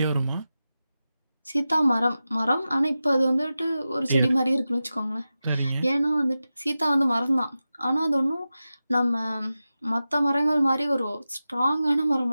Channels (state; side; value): inverted; both; correlation -0.93